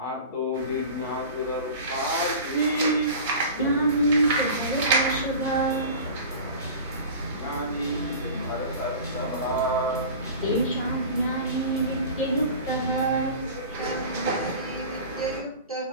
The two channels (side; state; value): both; inverted; correlation -0.36